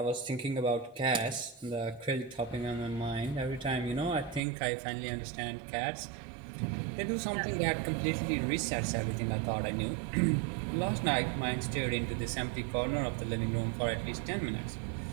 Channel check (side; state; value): left; drops out; at 4.4 s